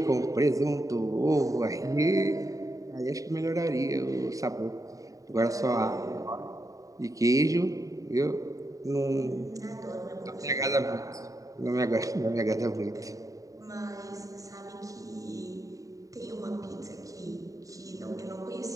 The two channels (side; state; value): left; late; 0.16 ms